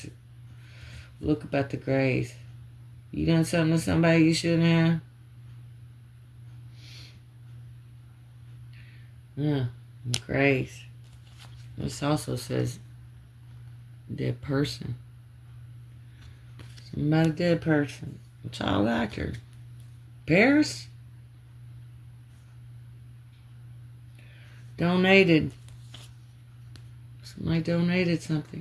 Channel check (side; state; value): both; identical; correlation 1.00